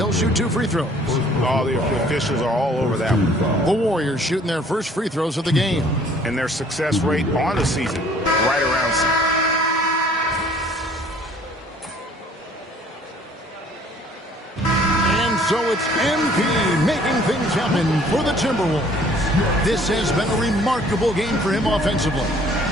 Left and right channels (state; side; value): normal; both; correlation 0.56